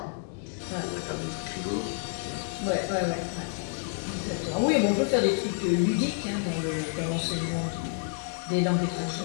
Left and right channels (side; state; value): right; silent; 59 dB below the other